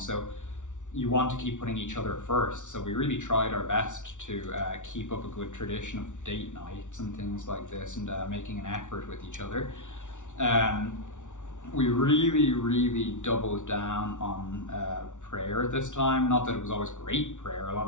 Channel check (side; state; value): right; late; 0.86 ms